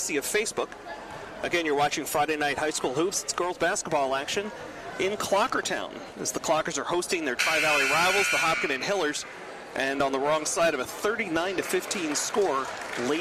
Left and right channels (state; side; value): identical; both; correlation 1.00